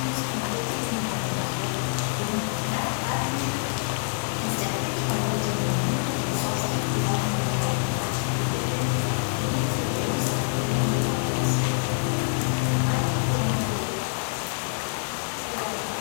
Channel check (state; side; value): silent; right; digital silence